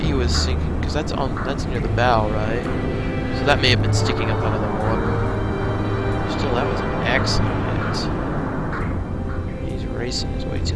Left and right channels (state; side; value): identical; both; correlation 1.00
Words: he was sinking, because that's near the bow, right? So that may have been sticking up out of the water. Still, that was an excellent hit. He's racing his way to